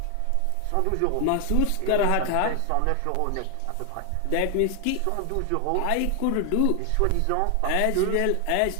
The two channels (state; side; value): different; both; correlation 0.00